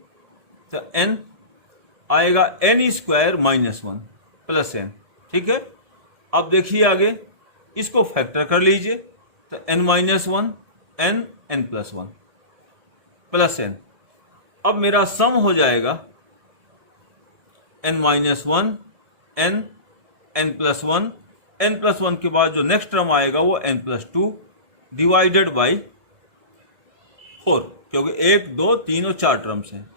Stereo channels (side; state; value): left; late; 1.7 ms